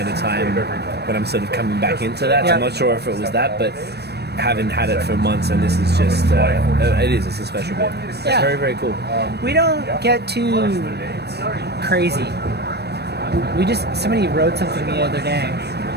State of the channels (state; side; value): late; left; 0.48 ms